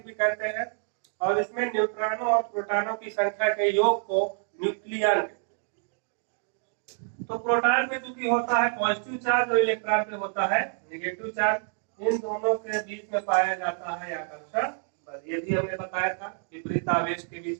भी कहते हैं, और इसमें न्यूट्रॉनों और प्रोटॉनों की संख्या के योग को न्यूक्लियन कहते हैं। तो प्रोटॉन पे चूंकि होता है पॉजिटिव चार्ज और इलेक्ट्रॉन पे होता है नेगेटिव चार्ज, इन दोनों के बीच में पाया जाता है आकर्षण बल। ये भी हमने बताया था, विपरीत आवेश के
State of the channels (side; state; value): left; silent; 60 dB below the other